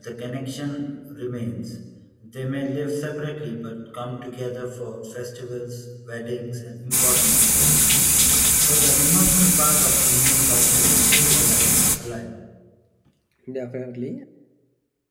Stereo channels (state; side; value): identical; both; correlation 1.00